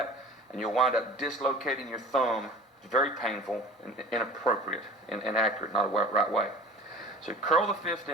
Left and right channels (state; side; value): normal; both; correlation 0.42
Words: and you'll wind up dislocating your thumb. It's very painful and inappropriate and inaccurate, not a right way. So curl the fist